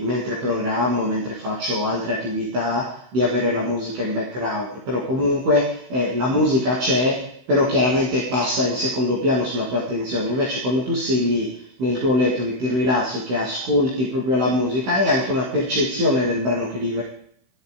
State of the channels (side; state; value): left; late; 16 ms